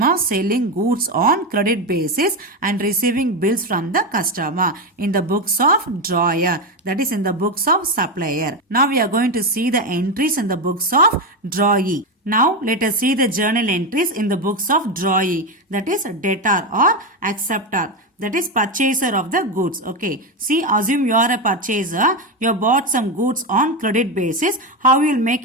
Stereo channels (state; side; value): normal; both; correlation 0.12